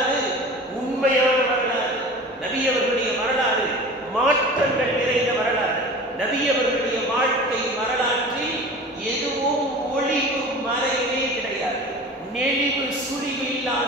உண்மையான வரலாறு, நபி அவர்களுடைய வரலாறு மாற்றங்கள் நிறைந்த வரலாறு, நபி அவர்களுடைய வாழ்க்கை வரலாற்றில் எதுவும் ஒளிவு மறைவே கிடையாது. நெளிவு சுழிவு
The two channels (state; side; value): normal; both; correlation 0.38